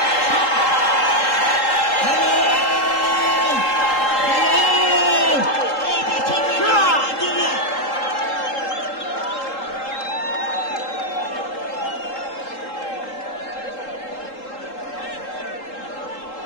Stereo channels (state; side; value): late; right; 3.8 ms